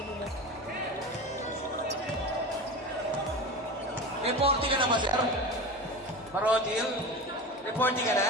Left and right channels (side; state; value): both; normal; correlation 0.28